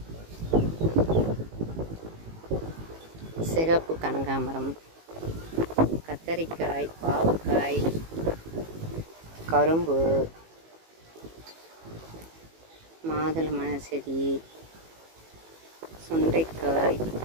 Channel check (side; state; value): left; late; 18 ms